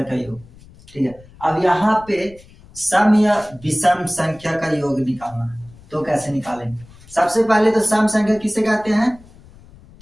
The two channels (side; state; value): left; noise; rumble, 23 dB below the sound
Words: का योग। ठीक है, अब यहाँ पे सम या विषम संख्या का योग निकालना है, तो कैसे निकालेंगे? सबसे पहले तो सम संख्या किसे कहते हैं?